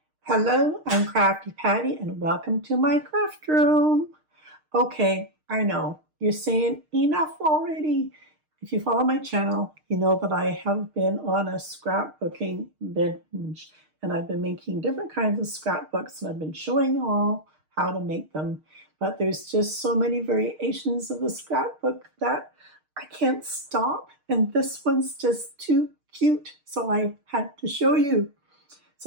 Hello, I'm Crafty Patti and welcome to my craft room. Okay, I know, you're saying enough already. If you follow my channel, you know that I have been on a scrapbooking binge and I've been making different kinds of scrapbooks and I've been showing you all how to make them. But there's just so many variations of the scrapbook that I can't stop, and this one's just too cute, so I had to show you.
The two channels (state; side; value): late; left; 6.5 ms